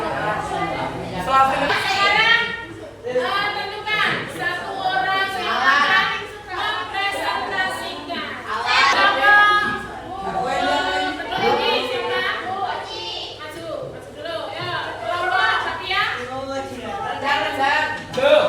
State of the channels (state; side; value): identical; both; correlation 1.00